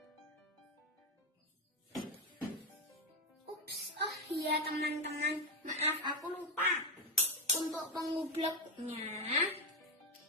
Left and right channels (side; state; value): both; normal; correlation 0.08